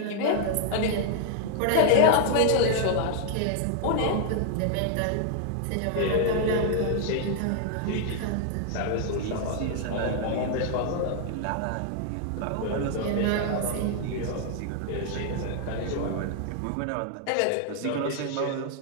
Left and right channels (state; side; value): different; both; correlation 0.00